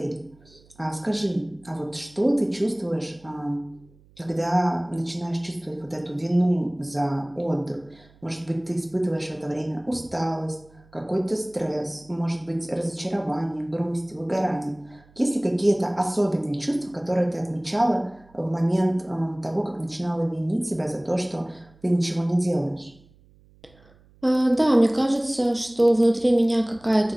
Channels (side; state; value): right; noise; hum, 28 dB below the sound